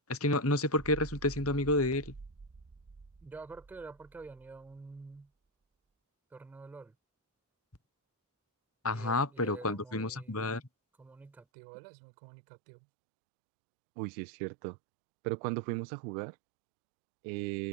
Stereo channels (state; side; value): drops out; left; at 11.5 s